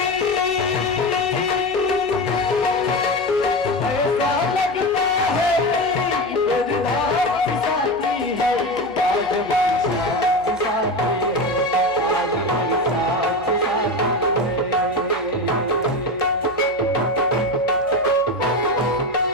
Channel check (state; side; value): noise; right; hum, 23 dB below the sound